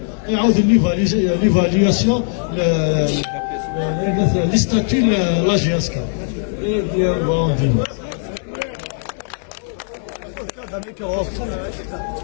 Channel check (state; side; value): silent; right; digital silence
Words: يعاود ليفالياسيون لي ستاتيو لا جي اس كا